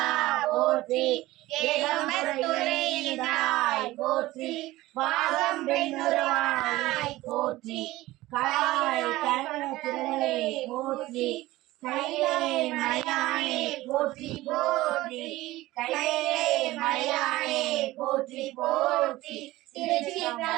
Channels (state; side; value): quieter; left; 17.8 dB